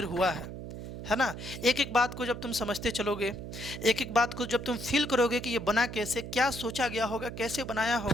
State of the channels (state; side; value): noise; right; hum, 9 dB below the sound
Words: हुआ है ना। एक एक बात को जब तुम समझते चलोगे, एक एक बात को जब तुम फील करोगे कि ये बना कैसे, क्या सोचा गया होगा, कैसे बनाया